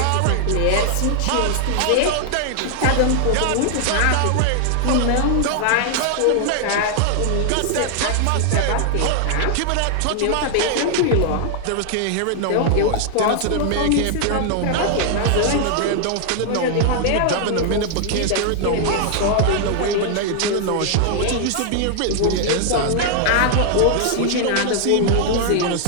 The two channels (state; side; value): different; both; correlation 0.00